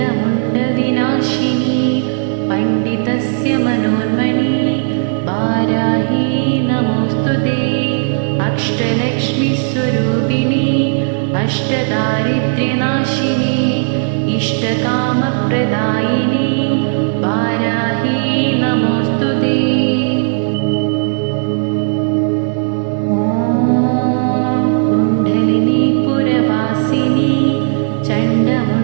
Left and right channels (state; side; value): silent; left; digital silence